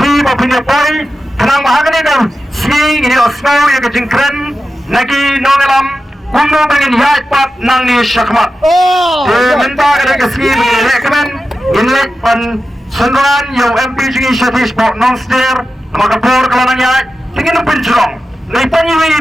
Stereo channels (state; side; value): normal; both; correlation 0.92